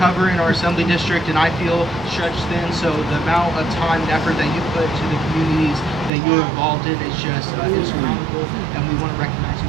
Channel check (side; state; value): left; drops out; at 6.1 s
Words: in our assembly district, and I feel stretched thin, so the amount of time and effort that you put to the communities that you're involved in is just astronomical, and we want to recognize